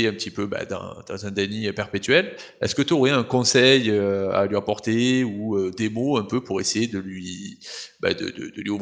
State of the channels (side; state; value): both; identical; correlation 1.00